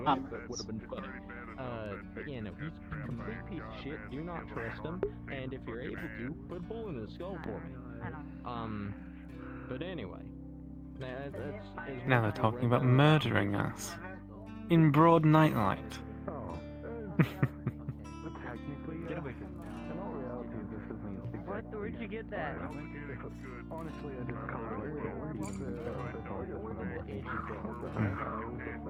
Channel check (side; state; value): both; identical; correlation 1.00